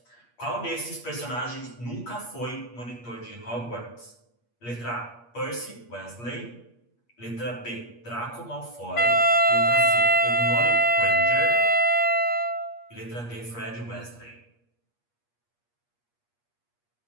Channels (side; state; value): right; late; 8.4 ms